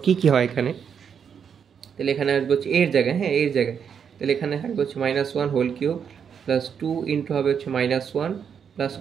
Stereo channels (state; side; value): quieter; left; 7.3 dB